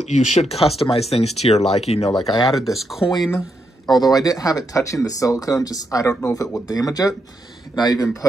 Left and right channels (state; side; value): normal; both; correlation 0.81